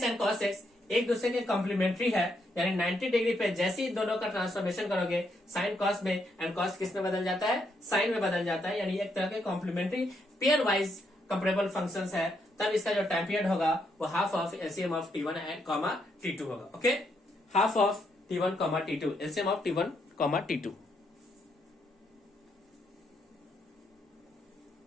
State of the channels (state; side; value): normal; both; correlation 0.77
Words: and cos x एक दूसरे के कॉम्प्लीमेंट्री है, यानी 90 डिग्री पे जैसे ही दोनों का ट्रांसफॉर्मेशन करोगे साइन कॉस में एंड कॉस किस में बदल जाता है, साइन में बदल जाता है, यानी एक तरह के complementary pairwise comparable functions है। तब इसका जो टाइम पीरियड होगा वो half of LCM of t1 and t2 होगा। Okay, half of t1 t2, LCM of t1 t2।